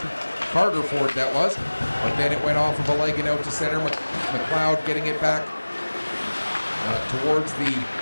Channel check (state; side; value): inverted; both; correlation -1.00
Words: Carter Ford that was, but then it went off of a leg and out to center. McLeod getting it back towards the